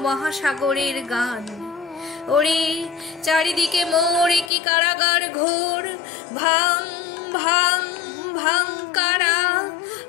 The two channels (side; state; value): right; drops out; at 4.5 s